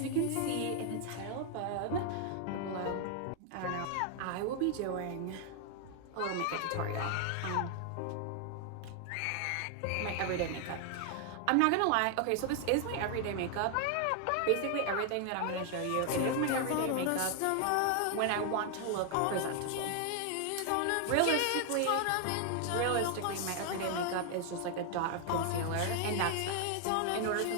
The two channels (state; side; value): different; both; correlation 0.00